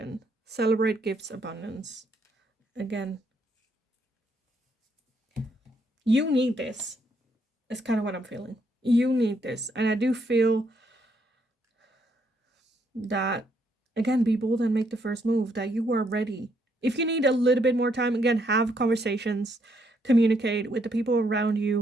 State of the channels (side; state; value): both; normal; correlation 0.73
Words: Celebrate gifts, abundance. Again, you need this. It's kind of what I'm feeling. You need this. And I do feel that, again, be bold and make the first move, that you are ready. If you need a little bit more time, again, have conversations, communicate with the people around